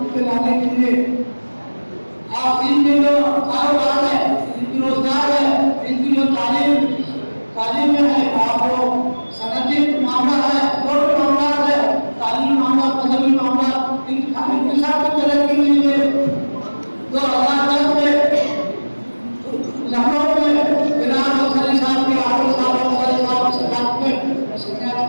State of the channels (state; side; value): inverted; both; correlation -1.00